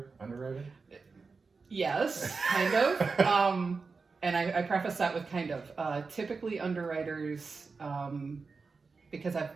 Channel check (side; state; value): left; quieter; 4.5 dB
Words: underwriter? Yes, kind of. And I preface that with kind of. Typically underwriters, because